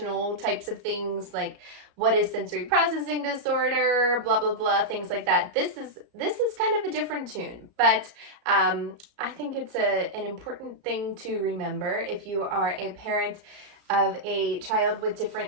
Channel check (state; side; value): late; left; 34 ms